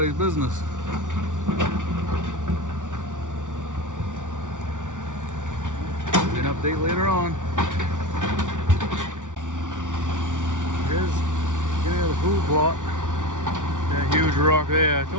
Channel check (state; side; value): late; left; 0.87 ms